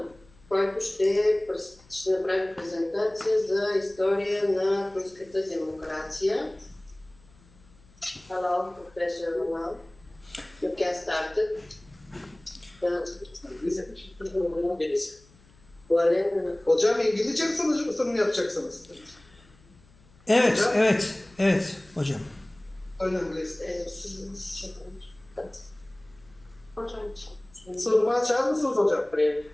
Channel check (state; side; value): noise; left; hum, 27 dB below the sound